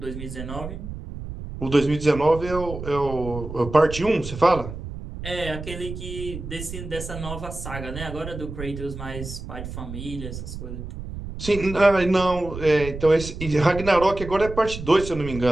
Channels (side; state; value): right; noise; rumble, 9 dB below the sound